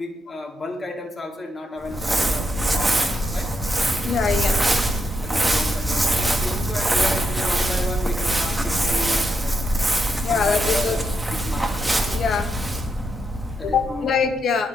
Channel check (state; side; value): normal; both; correlation 0.82